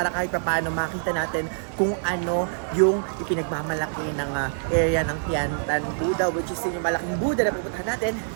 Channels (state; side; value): silent; left; digital silence